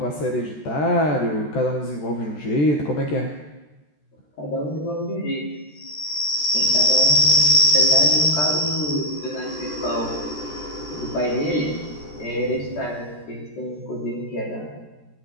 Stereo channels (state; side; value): late; right; 13 ms